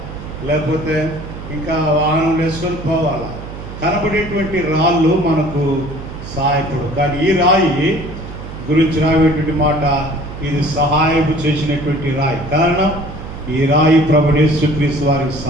లేకపోతే ఇంకా వాహనం వేసుకొని పోవాలా. కనబడేటువంటి రాళ్ళు మనకు సహాయపడు. కానీ ఈ రాయి గురించి రాయేటువంటి మాట, ఇది సహాయం చేసినటువంటి రాయి. కారణం ఈ రాయి ప్రభువు యేసుక్రీస్తు వారికి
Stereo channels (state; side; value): noise; right; hum, 11 dB below the sound